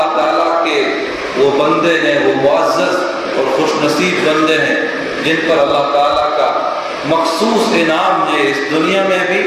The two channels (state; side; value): identical; both; correlation 1.00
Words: تعالیٰ کے وہ بندے ہیں، وہ معزز اور خوش نصیب بندے ہیں جن پر اللہ تعالیٰ کا مخصوص انعام ہے اس دنیا میں بھی